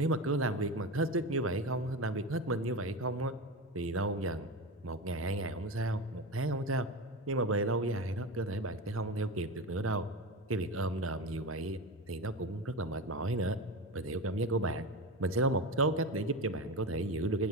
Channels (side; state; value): both; normal; correlation 0.22